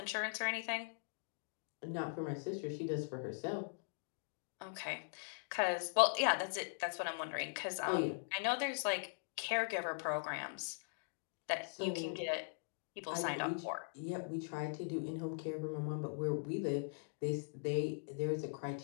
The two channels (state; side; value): silent; right; digital silence